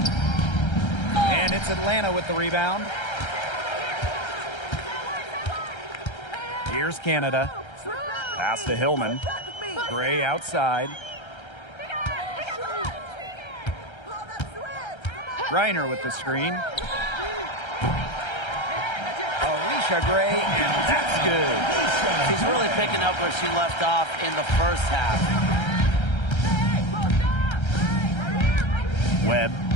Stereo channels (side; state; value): right; late; 1.3 ms